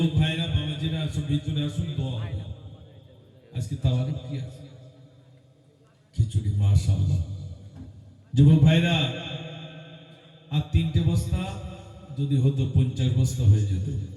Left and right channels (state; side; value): identical; both; correlation 1.00